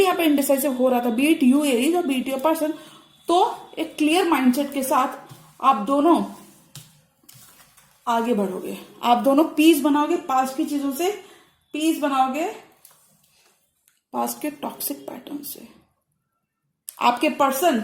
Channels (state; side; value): identical; both; correlation 1.00